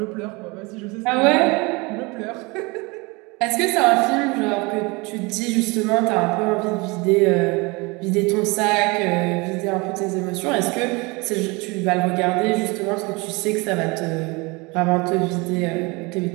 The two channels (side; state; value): left; quieter; 26.4 dB